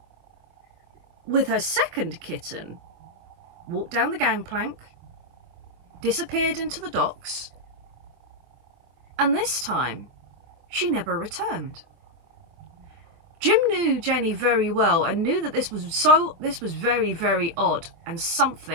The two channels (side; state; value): left; late; 24 ms